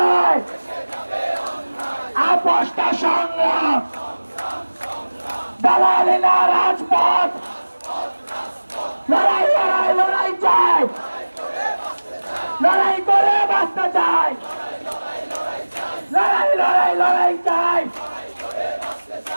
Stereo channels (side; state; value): both; inverted; correlation -1.00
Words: আপোষটা সংগ্রাম দালালেরা রাজপথ লড়াই লড়াই লড়াই চাই লড়াই করে বাঁচতে চাই লড়াই লড়াই লড়াই চাই